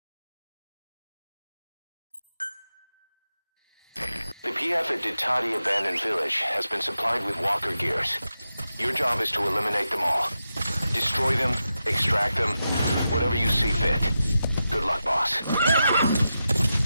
The PF at Ditati Abandoned Village has been supplied with Walker Gears. Your job is to eliminate them all. Destroy them, extract them, whatever you see fit. Good luck, boss.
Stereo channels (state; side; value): inverted; both; correlation -0.89